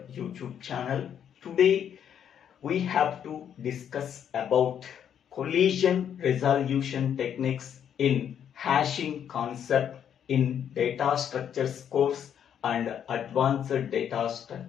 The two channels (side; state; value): right; quieter; 8.9 dB